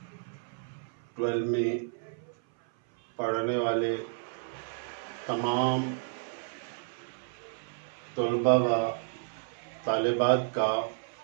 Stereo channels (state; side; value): silent; left; 57 dB below the other